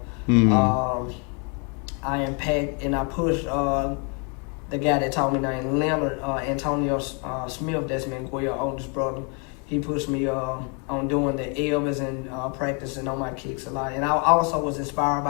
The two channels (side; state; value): right; quieter; 36.0 dB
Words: I impact and I push the guy that taught me named Leonard, Antonio Smith, that's Miguel's oldest brother. He pushed me on doing the Elvis and practicing on my kicks a lot. And I also was inspired